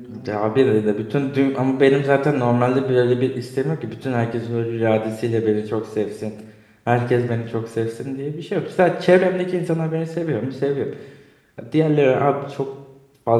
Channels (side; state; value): both; identical; correlation 1.00